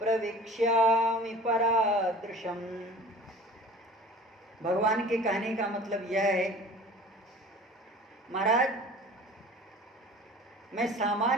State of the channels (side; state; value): both; normal; correlation 0.43